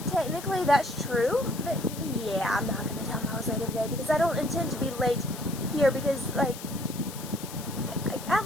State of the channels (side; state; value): left; noise; hiss, 13 dB below the sound